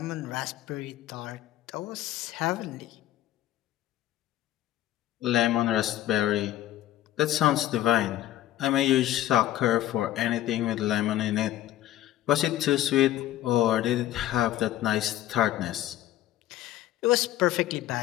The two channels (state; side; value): quieter; right; 13.7 dB